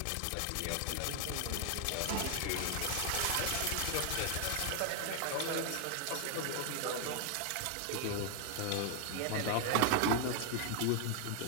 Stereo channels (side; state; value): both; different; correlation 0.00